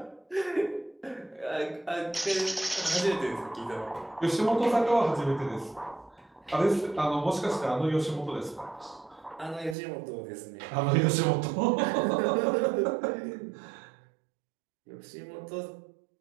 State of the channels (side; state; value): left; drops out; at 9.8 s